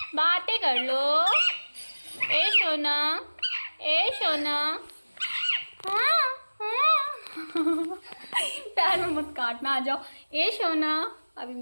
बातें कर लो। ए सोना, ए सोना, पैर में मत काटना, आ जाओ। ए सोना, अभी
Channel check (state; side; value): inverted; both; correlation -1.00